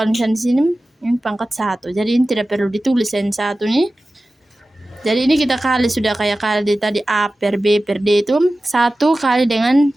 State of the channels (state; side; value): normal; both; correlation 0.95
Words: misalnya di sini ini pangkat 1. Jadi ini tidak perlu ditulis yang 1 nih. Jadi ini kita kali sudah kayak kali tadi A per B per D itu 1 kali dengan